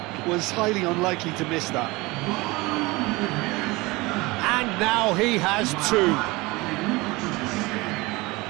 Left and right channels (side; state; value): left; quieter; 22.8 dB